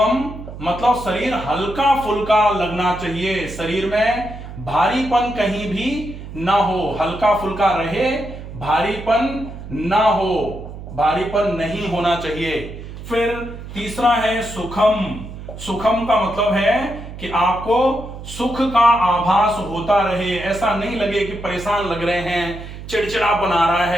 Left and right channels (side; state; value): right; noise; hum, 12 dB below the sound